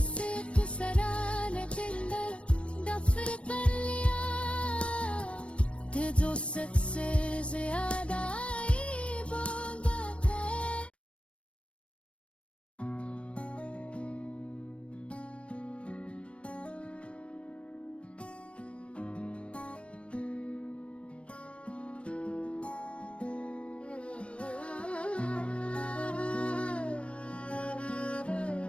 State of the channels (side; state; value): right; late; 0.061 ms